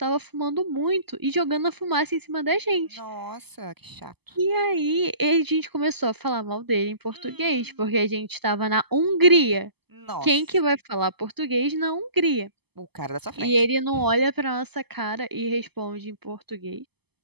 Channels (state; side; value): late; left; 0.97 ms